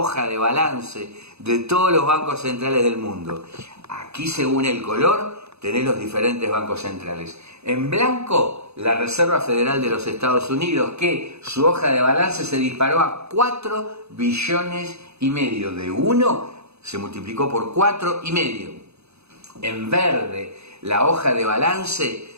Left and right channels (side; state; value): left; late; 0.80 ms